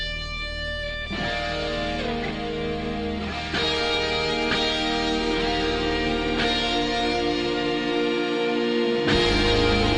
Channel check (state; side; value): identical; both; correlation 1.00